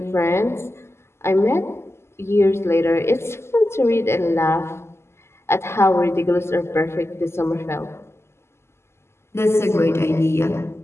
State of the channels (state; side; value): late; right; 0.12 ms